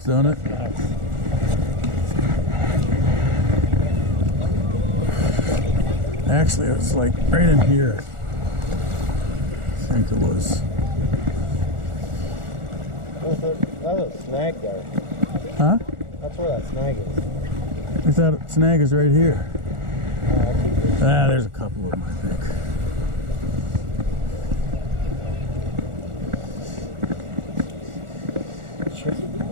don't it? Nice. Actually, it was like right in here. I think it was. That's a snag there. Huh? That's where that snag is. I thought snag is right here. There's a couple of them, I think.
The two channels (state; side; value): late; left; 1.4 ms